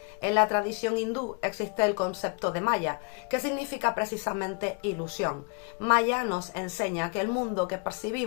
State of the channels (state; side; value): quieter; right; 35.6 dB